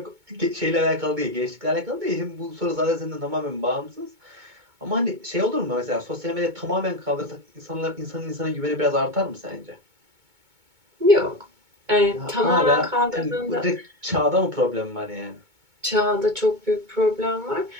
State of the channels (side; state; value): left; late; 2.2 ms